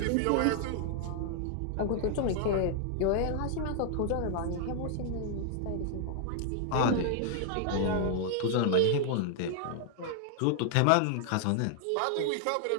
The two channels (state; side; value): different; both; correlation 0.00